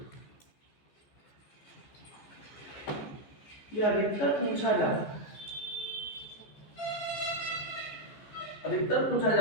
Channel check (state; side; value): late; right; 14 ms